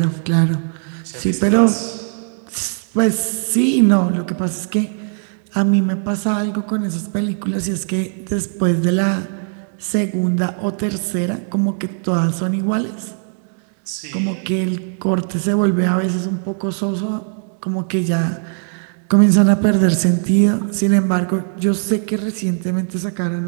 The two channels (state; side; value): silent; left; 60 dB below the other